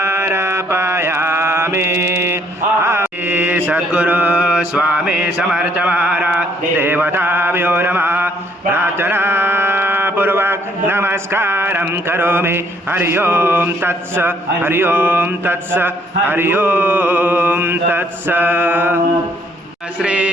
सद्गुरु स्वामी समर्थ महाराज देवताभ्यो नमः। प्रार्थना पूर्वक नमस्कारं करोमि। हरि ओम तत्स हरि ओम तत्स हरि ओम तत्स। श्री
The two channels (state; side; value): normal; both; correlation 0.66